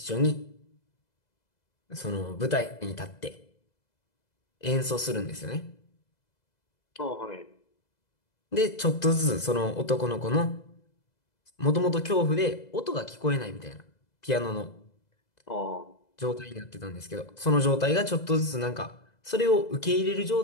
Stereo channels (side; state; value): right; late; 2.0 ms